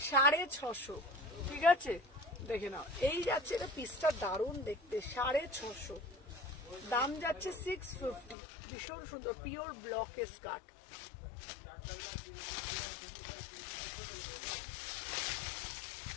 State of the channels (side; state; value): right; drops out; at 8.3 s